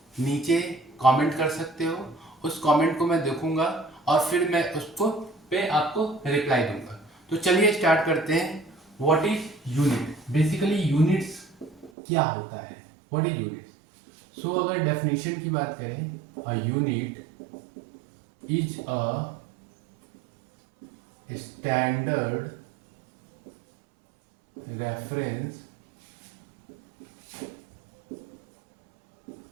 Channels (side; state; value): left; drops out; at 11.9 s